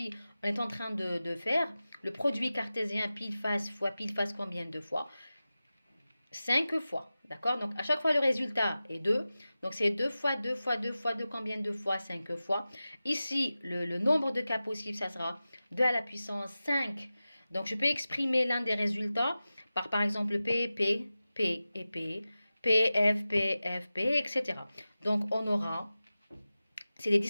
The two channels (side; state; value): both; inverted; correlation -0.95